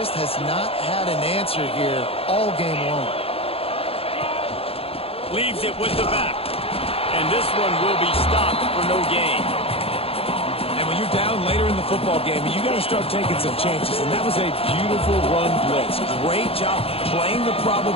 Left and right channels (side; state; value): right; late; 0.28 ms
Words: has not had an answer here all game long. Leaves it with the back. And this one will be stopped for no gain. And when you're down later in the football game, you got to start taking some chances. And that was a beautiful run blitz. Great job playing the